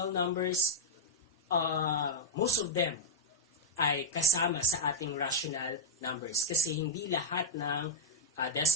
numbers, most of them ay kasama sa ating rational numbers kasi hindi lahat ng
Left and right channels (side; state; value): both; normal; correlation 0.00